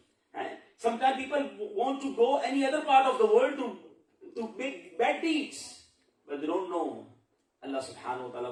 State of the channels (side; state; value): both; identical; correlation 1.00